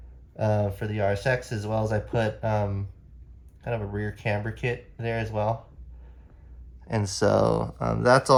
for the RSX, as well as I put kind of a rear camber kit there as well. And so that's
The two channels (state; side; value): identical; both; correlation 1.00